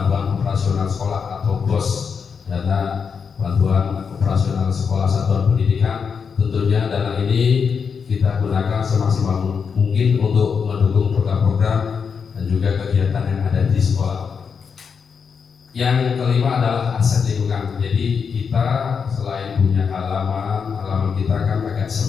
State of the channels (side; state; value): right; quieter; 6.1 dB